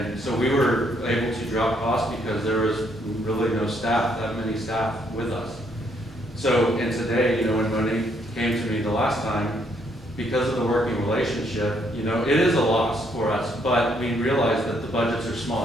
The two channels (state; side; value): normal; both; correlation 0.71